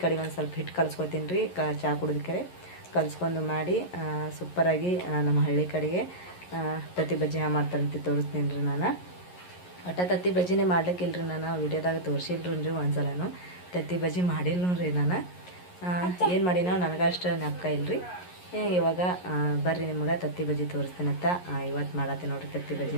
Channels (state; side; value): late; right; 11 ms